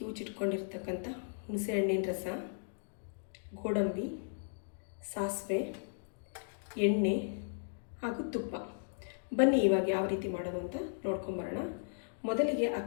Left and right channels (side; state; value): right; silent; digital silence